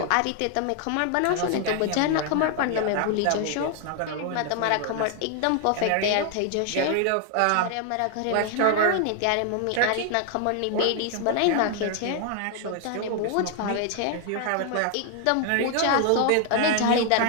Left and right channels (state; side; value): different; both; correlation 0.00